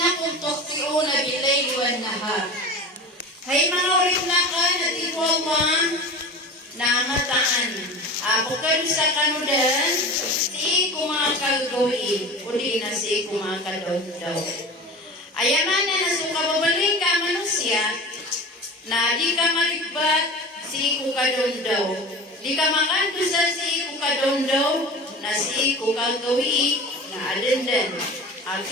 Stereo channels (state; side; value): normal; both; correlation 0.34